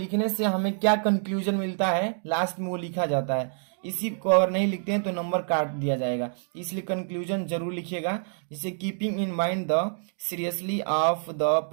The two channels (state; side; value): silent; left; digital silence